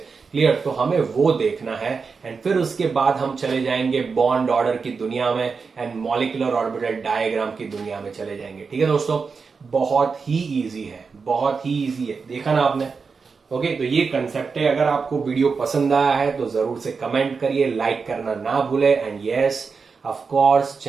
क्लियर? तो हमें वो देखना है। एंड फिर उसके बाद हम चले जाएंगे बॉन्ड ऑर्डर की दुनिया में एंड मॉलिक्यूलर ऑर्बिटल डायग्राम की दुनिया में चले जाएंगे। ठीक है दोस्तों, बहुत ही इजी है, बहुत ही इजी है। देखा ना आपने? ओके, तो ये कंसेप्ट है। अगर आपको वीडियो पसंद आया है तो जरूर से कमेंट करिए, लाइक करना ना भूले and yes of course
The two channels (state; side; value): quieter; left; 5.1 dB